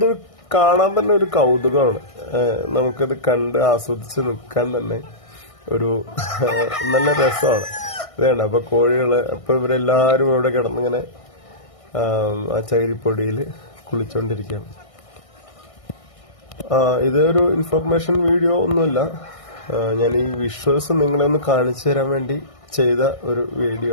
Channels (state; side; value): late; right; 1.6 ms